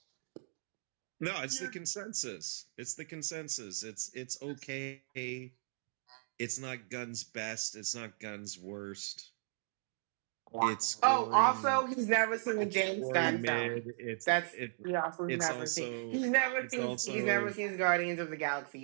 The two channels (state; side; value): silent; left; digital silence